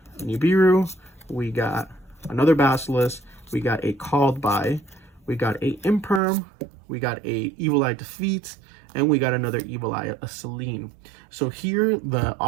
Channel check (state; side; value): drops out; left; at 6.2 s